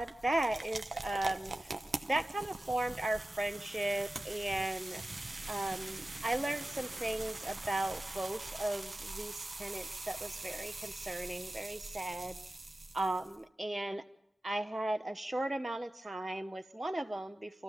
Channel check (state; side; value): normal; both; correlation 0.96